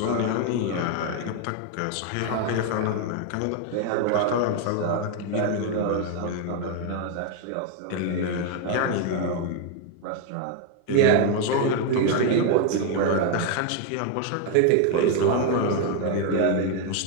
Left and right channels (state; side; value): different; both; correlation 0.01